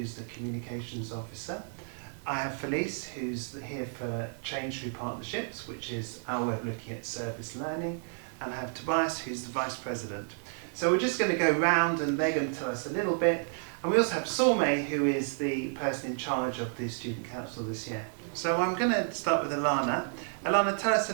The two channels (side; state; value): left; silent; 57 dB below the other